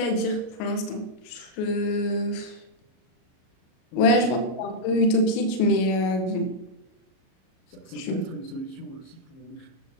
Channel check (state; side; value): late; right; 38 ms